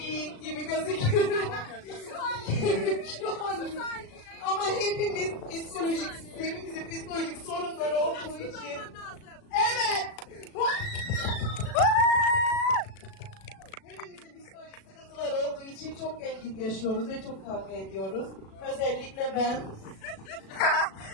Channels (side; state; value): right; late; 36 ms